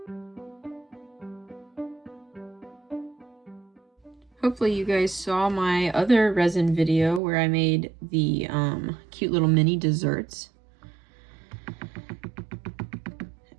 Hopefully you guys saw my other resin video where I made the cute little mini desserts.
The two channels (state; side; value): drops out; left; at 7.2 s